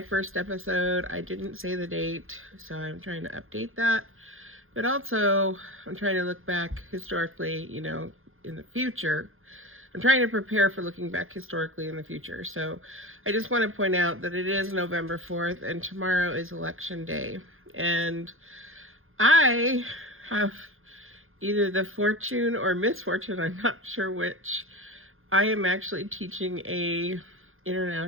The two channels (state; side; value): late; left; 0.60 ms